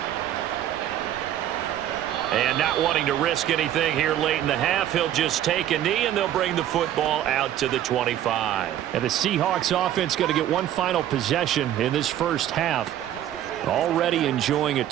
And not wanting to risk anything here late in the half, he'll just take a knee and they'll bring the football out to the 25. And the Seahawks offense going to get one final possession in this first half. Already enjoying a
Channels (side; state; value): left; quieter; 11.8 dB